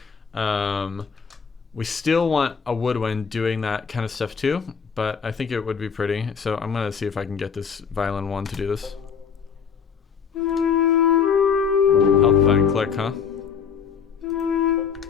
We still want a woodwind doing that kind of stuff too, but I think it would be pretty. So I'm gonna see if I can get this violin one to do this. Help if I can click, huh?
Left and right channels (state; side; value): quieter; right; 6.6 dB